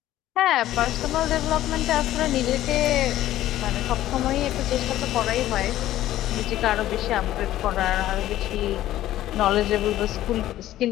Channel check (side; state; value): right; quieter; 13.9 dB